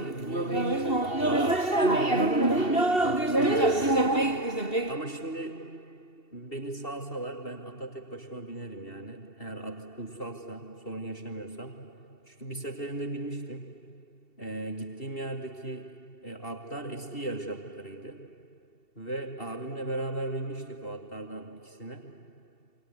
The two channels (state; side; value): late; right; 2.7 ms